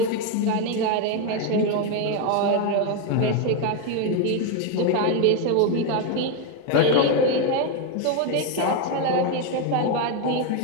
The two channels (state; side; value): different; both; correlation 0.02